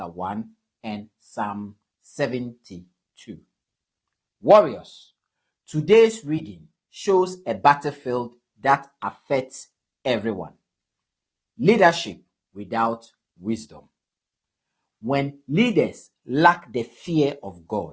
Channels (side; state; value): both; identical; correlation 1.00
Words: 1, and Psalm 72. Warriors, today's reading shows a battlefield that affects everyone. Leadership without wisdom. When leaders lack the fear of